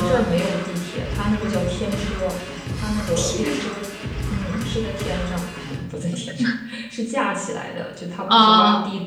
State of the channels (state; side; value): identical; both; correlation 1.00